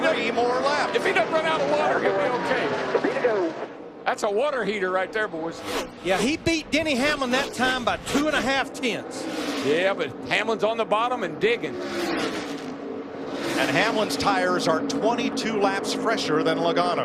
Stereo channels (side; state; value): both; identical; correlation 1.00